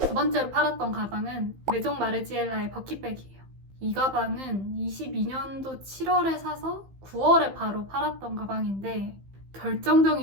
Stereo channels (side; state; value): left; late; 15 ms